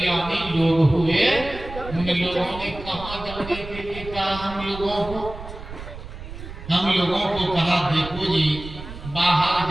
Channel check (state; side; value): noise; right; rumble, 12 dB below the sound